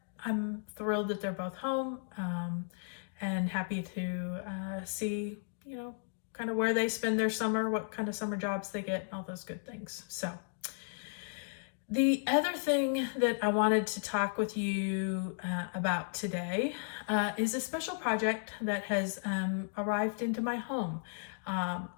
I'm thrilled that they're both home and happy to see, kind of where they spend their summer, what kind of summer jobs they get, all those good things. So the other thing that I wanted to talk with you about today is a special project that has arrived into my home.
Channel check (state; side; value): silent; right; digital silence